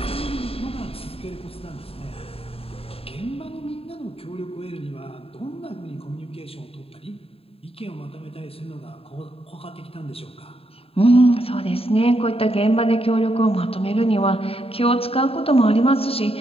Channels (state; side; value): late; right; 0.28 ms